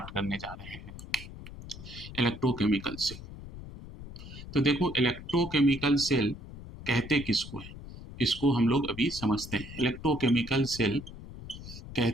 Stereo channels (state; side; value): noise; left; rumble, 13 dB below the sound